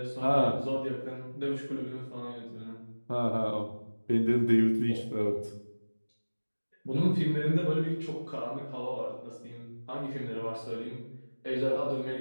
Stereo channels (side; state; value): both; inverted; correlation -1.00